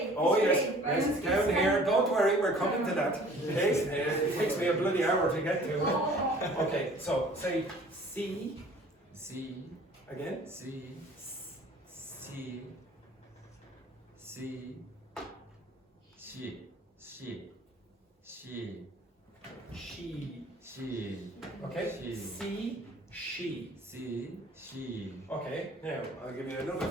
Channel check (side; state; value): both; normal; correlation 0.51